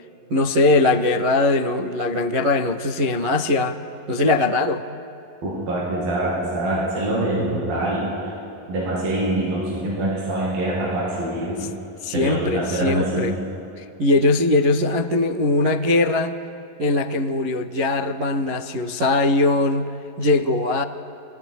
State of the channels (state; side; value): late; left; 11 ms